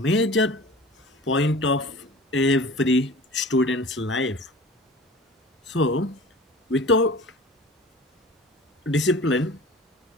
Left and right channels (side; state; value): both; normal; correlation 0.40